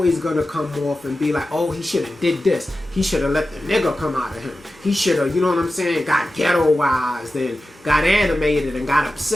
gonna come off and be like, oh, he should have did this. He should have let the nigga come out of him. He should have, you know what I'm saying, got ghettoized and got animated and got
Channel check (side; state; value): both; normal; correlation 0.93